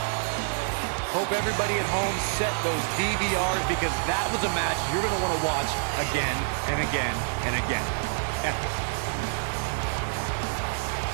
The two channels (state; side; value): silent; left; digital silence